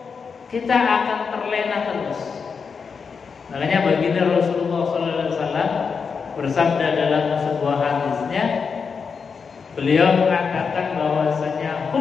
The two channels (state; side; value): quieter; right; 5.7 dB